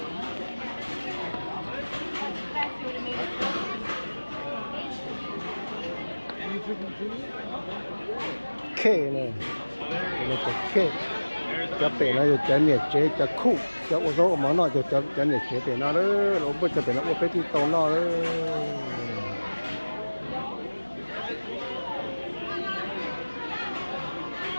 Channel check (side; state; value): both; inverted; correlation -1.00